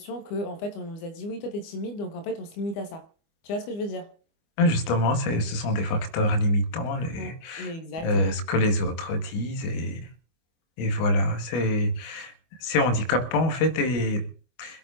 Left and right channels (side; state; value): right; late; 24 ms